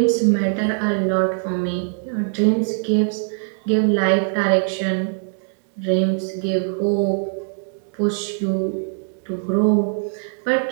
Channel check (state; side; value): silent; left; digital silence